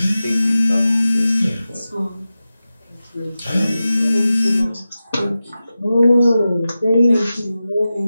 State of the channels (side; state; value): both; inverted; correlation -0.94